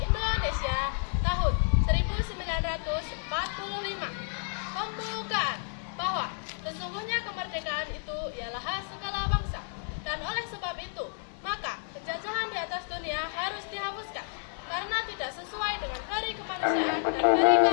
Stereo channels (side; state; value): right; silent; 57 dB below the other